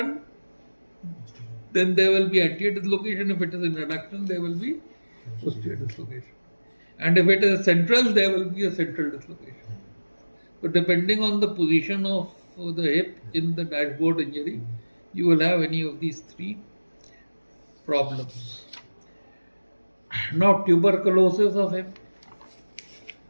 then there will be anterior dislocation. If it is an adduction, there will be posterior dislocation. And if it is central, there will be a central dislocation. So depending on the position of the hip in the dashboard injury, you will have any of these three problems. Now tuberculosis of hip.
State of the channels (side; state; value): both; inverted; correlation -1.00